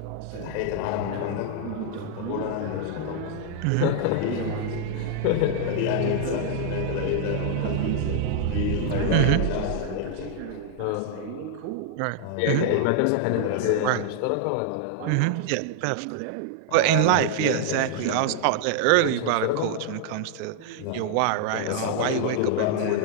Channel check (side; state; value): both; different; correlation 0.00